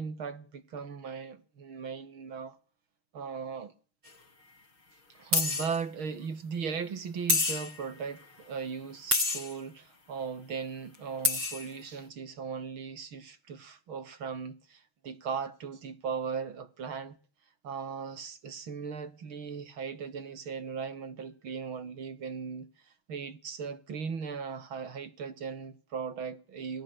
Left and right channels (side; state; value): left; late; 6.3 ms